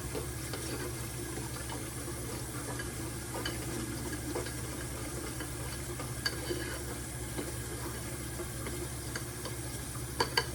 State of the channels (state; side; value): identical; both; correlation 1.00